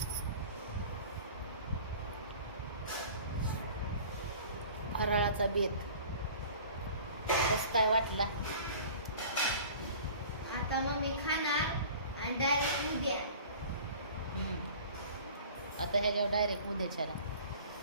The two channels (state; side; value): inverted; both; correlation -0.44